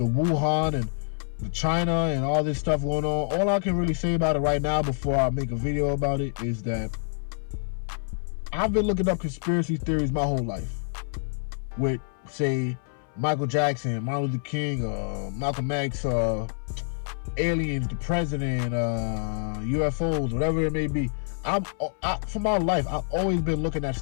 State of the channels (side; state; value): right; silent; 60 dB below the other